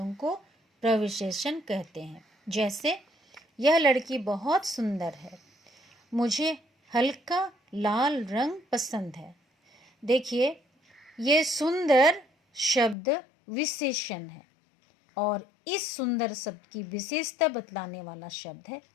को प्रविशेषण कहते हैं। जैसे यह लड़की बहुत सुंदर है, मुझे हल्का लाल रंग पसंद है। देखिए, ये सुंदर शब्द विशेषण है और इस सुंदर शब्द की विशेषता बतलाने वाला शब्द है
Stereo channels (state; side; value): drops out; right; at 13.0 s